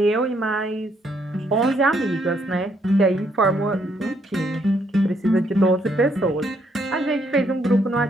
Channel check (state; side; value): normal; both; correlation 0.72